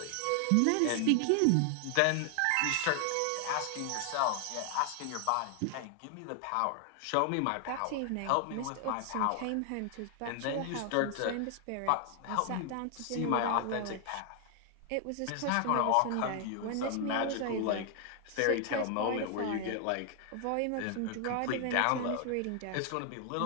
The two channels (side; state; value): both; different; correlation 0.00